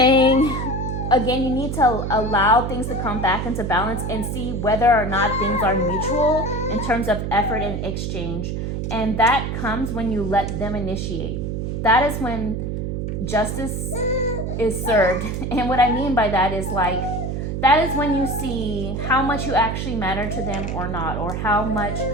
again, you need to allow things to come back into balance and see whether or not things are mutual in terms of effort and exchange. And that comes when you let them initiate. That is when justice is served. And what I mean by that is like, that is when you see how much you actually matter to them or not, or how much,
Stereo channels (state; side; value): noise; right; hum, 3 dB below the sound